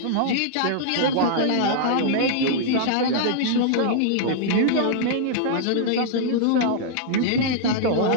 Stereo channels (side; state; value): both; different; correlation -0.01